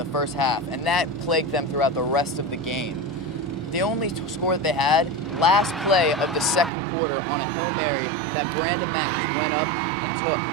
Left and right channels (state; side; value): drops out; left; at 6.7 s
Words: first half, and that plagued them throughout the rest of the game. The only score that they had, last play of the second quarter on a Hail Mary that Brandon Mack just went up and took.